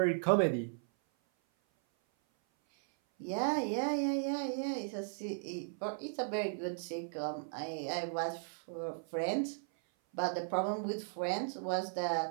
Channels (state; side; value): silent; left; 53 dB below the other